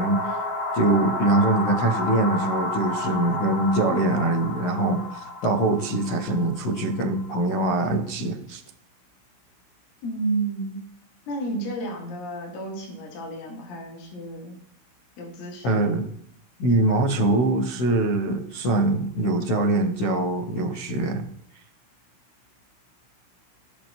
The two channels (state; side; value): late; right; 16 ms